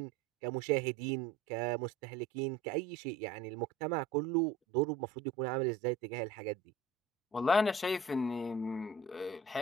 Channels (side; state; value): left; quieter; 3.6 dB